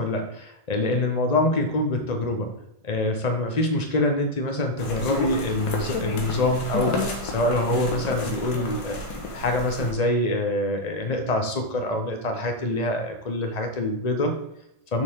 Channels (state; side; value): late; right; 1.5 ms